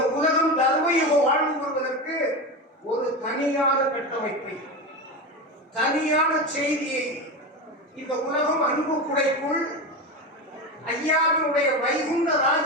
உலகம் தர்மயுக வாழ்வு வருவதற்கு ஒரு தனியான கட்டமைப்பை, தனியான செய்தியை இந்த உலகம் அன்பு குடைக்குள் ஐயாவினுடைய வைகுண்ட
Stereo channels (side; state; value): both; normal; correlation 0.21